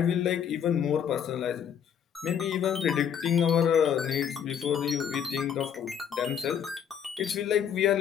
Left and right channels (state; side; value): quieter; right; 8.4 dB